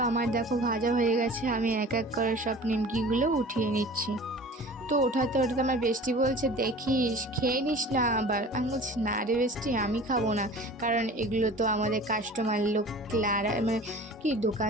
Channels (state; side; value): normal; both; correlation 0.42